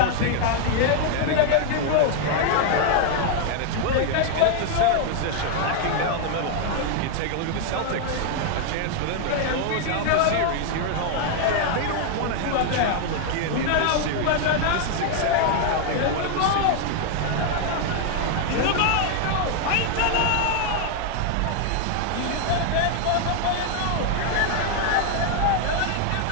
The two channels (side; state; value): both; different; correlation 0.00